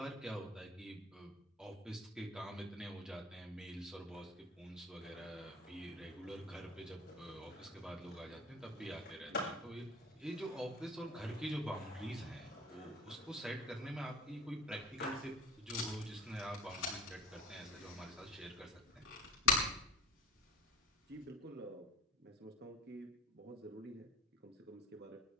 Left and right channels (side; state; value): both; normal; correlation 0.39